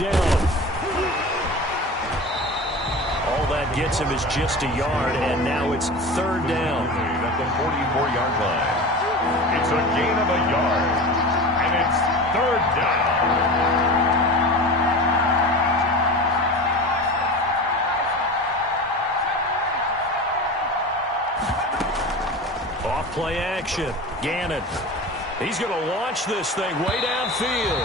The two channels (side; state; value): both; normal; correlation 0.31